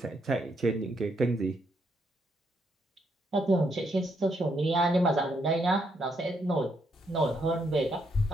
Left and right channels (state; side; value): normal; both; correlation 0.76